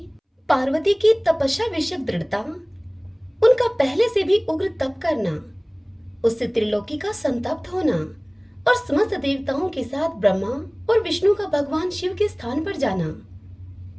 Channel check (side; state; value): both; identical; correlation 1.00